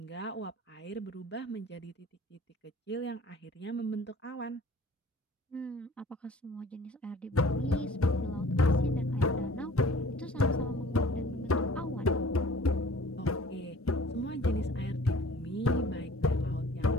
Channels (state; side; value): normal; both; correlation 0.49